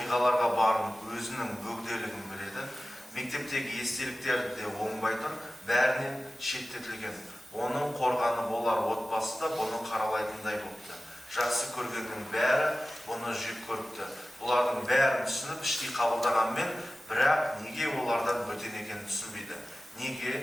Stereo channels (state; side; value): normal; both; correlation 0.96